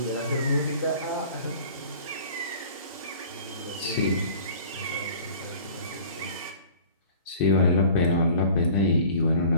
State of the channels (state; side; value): inverted; both; correlation -0.47